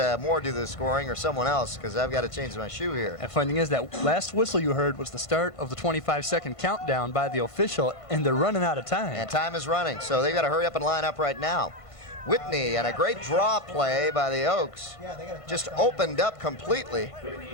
Moore do the scoring or someone else because I've got to change my shoe here. And funny thing is, that last whistle you heard was the start of the 25-second countdown by the official, and they're running out of time. And time is running, so they've got to hurry up and line up right now. Whitney, and a great draw play by the Oaks, just opened up completely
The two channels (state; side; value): late; right; 1.5 ms